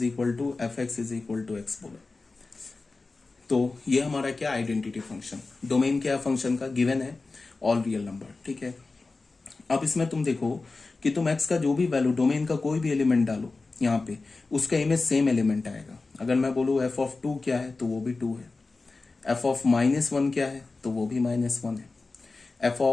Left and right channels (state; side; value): quieter; right; 3.7 dB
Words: equal to f x is equal to x बोला। तो ये हमारा क्या, आइडेंटिटी फंक्शन। डोमेन क्या है फंक्शन का, गिवन है ऑल रियल नंबर, ठीक है। अब इसमें तुम देखो कि तुम x का जो भी वैल्यू, डोमेन का कोई भी एलिमेंट डालो यहाँ पे, उसका इमेज सेम एलिमेंट आएगा। अगर मैं बोलूँ एफ ऑफ 2 क्या है तो वो भी 2 है, एफ ऑफ -1 क्या है तो वो भी -1 है, एफ